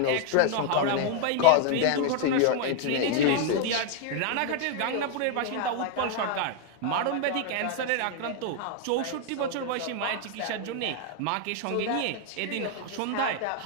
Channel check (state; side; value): different; both; correlation 0.00